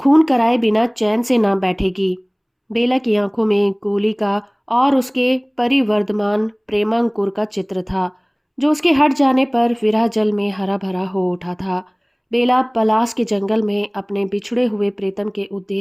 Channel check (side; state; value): both; identical; correlation 1.00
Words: कराए बिना चैन से ना बैठेगी। बेला की आंखों में गोली का और उसके परिवर्धमान प्रेमांकुर का चित्र था। जो उसके हट जाने पर विरह जल में हरा भरा हो उठा था। बेला पलास के जंगल में अपने बिछड़े हुए प्रीतम के